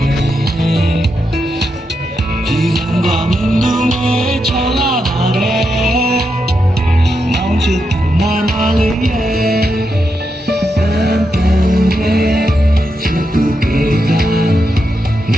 ဒီဘုံဘာမင်းတို့နဲ့ချောလာပါတယ်မောင်ချစ်သူမမလေးရဲ့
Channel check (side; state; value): both; normal; correlation 0.84